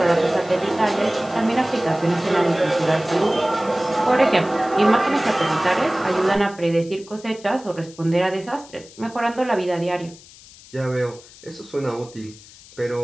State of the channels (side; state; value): left; noise; hiss, 21 dB below the sound